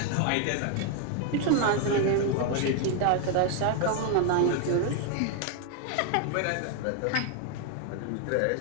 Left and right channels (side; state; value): both; different; correlation 0.00